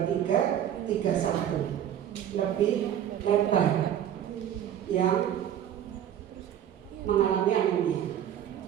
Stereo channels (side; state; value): left; quieter; 10.3 dB